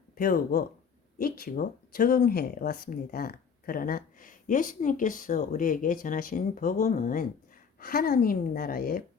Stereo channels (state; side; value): quieter; right; 6.4 dB